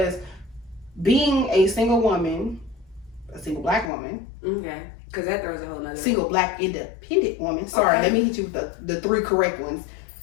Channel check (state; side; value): drops out; right; at 3.9 s